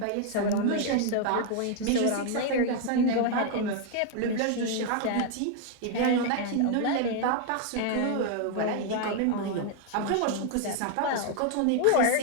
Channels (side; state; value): both; different; correlation 0.00